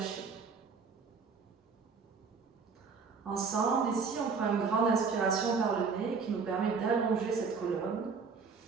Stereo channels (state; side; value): quieter; left; 5.2 dB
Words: Ensemble, ici, on prend une grande inspiration par le nez qui nous permet d'allonger cette colonne.